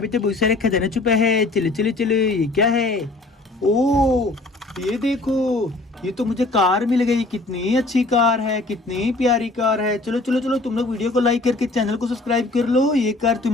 पे तो बहुत सारे खजाना छुपा है। चलो चलो चलो ये क्या है। ओ ये देखो, ये तो मुझे कार मिल गई। कितनी अच्छी कार है, कितनी प्यारी कार है। चलो चलो चलो तुम लोग वीडियो को लाइक करके चैनल को सब्सक्राइब कर लो। ये कार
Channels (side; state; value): right; quieter; 3.0 dB